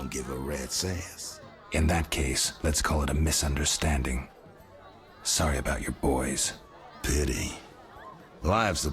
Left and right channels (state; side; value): identical; both; correlation 1.00